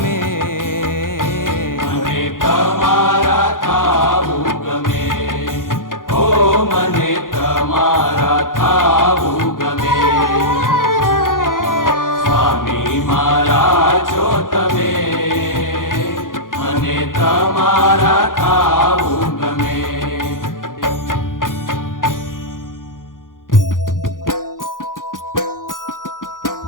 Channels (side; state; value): right; late; 0.90 ms